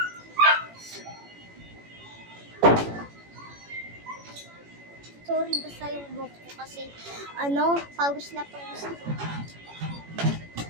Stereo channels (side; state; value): left; late; 18 ms